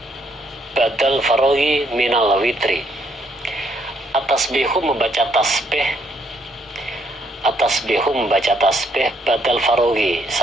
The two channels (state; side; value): normal; both; correlation 0.71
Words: badal faraghi minal witri. At-tasbihu membaca tasbih badal faraghi,